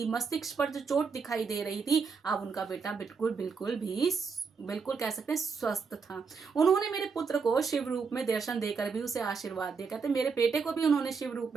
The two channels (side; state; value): left; quieter; 5.3 dB